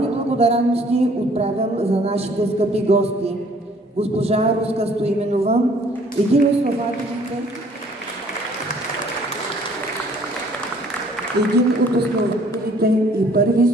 благодарности отправям за нашите скъпи гости. Госпожа Руска Стоименова, един от основателите и първи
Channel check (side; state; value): both; normal; correlation 0.58